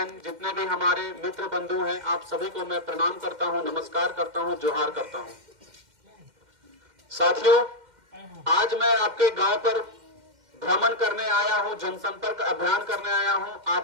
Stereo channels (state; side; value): late; left; 2.1 ms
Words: जितने भी हमारे मित्र बंधु हैं, आप सभी को मैं प्रणाम करता हूं, नमस्कार करता हूं, जोहार करता हूं। साथियों, आज मैं आपके गांव पर भ्रमण करने आया हूं, जनसंपर्क अभियान करने आया हूं,